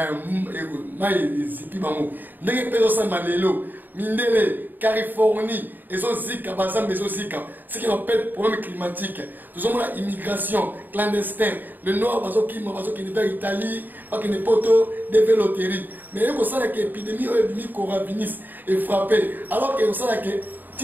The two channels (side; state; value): left; late; 0.089 ms